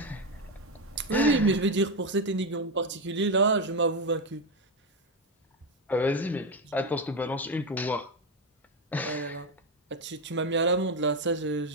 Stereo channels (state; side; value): normal; both; correlation 0.11